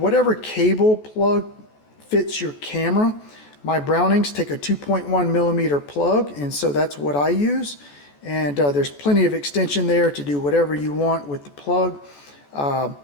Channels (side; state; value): right; late; 14 ms